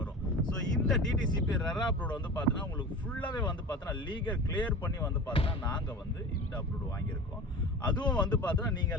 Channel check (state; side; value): normal; both; correlation 0.34